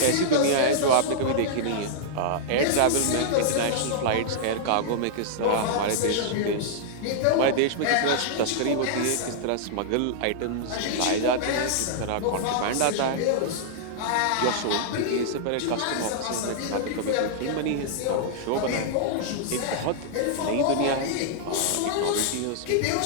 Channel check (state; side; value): different; both; correlation -0.01